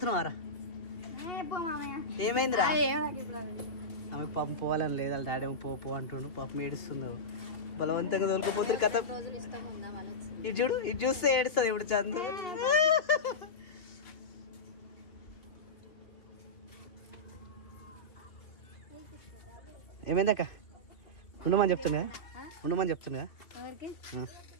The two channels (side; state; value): right; late; 2.7 ms